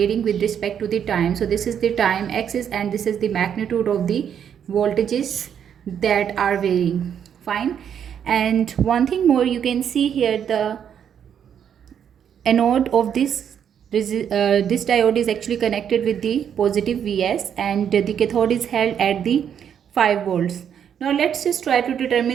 with respect to the time. So this is the time axis and this is the magnitude of the voltages that are varying. Fine. And one thing more, you can see here the anode of this diode is actually connected with the positive Vs, and the cathode is held at the 5 volts. Now let's just try to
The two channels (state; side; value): quieter; left; 8.5 dB